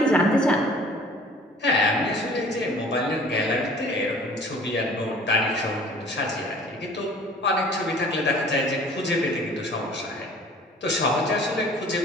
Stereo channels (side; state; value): both; normal; correlation 0.50